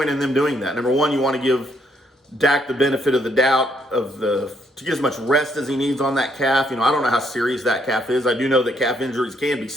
in them doing that. Number one, you want to give Dak the benefit of the doubt to get as much rest as he needs on that calf. I don't know how serious that calf is. I do know that calf injuries can be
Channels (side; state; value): both; normal; correlation 0.71